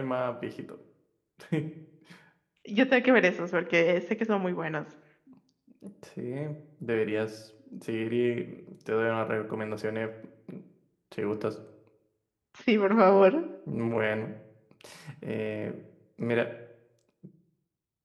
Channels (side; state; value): both; identical; correlation 1.00